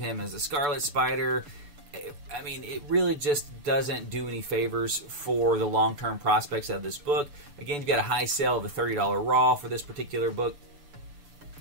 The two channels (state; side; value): late; left; 6.9 ms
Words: as the Scarlet Spider. I mean, it really just doesn't do any favors for the long-term prospects of this book. Again, you've got a high sale of a $30 raw for this particular book,